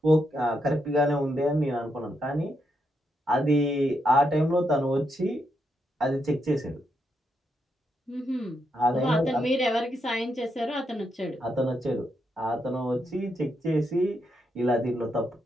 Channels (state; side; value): normal; both; correlation 0.80